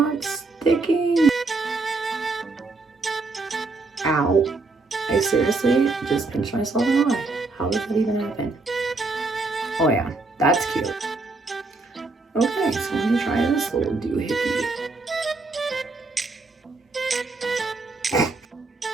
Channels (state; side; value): quieter; left; 3.5 dB